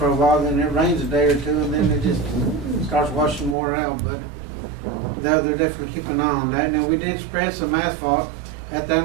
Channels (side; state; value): left; drops out; at 3.6 s